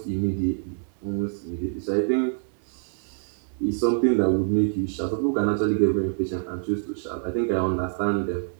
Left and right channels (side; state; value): left; silent; digital silence